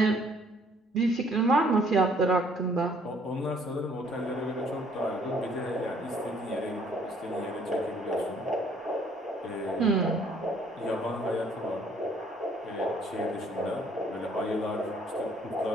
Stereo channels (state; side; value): normal; both; correlation 0.61